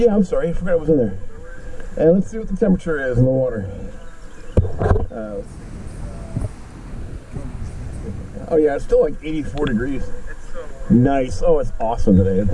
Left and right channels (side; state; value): both; identical; correlation 1.00